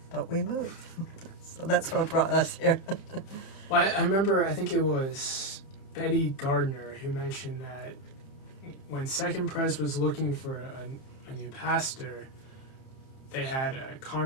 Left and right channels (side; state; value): right; late; 30 ms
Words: but we moved. So that's what brought us here. Well, I remember, I think it was Betty Gardner who mentioned that when Second Pres was looking for a new pastor, they had a